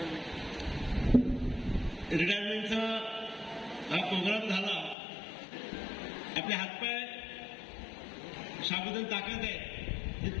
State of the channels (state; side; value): drops out; right; at 5.0 s